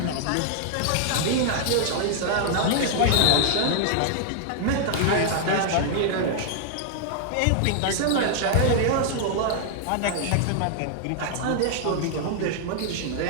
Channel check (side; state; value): both; different; correlation 0.00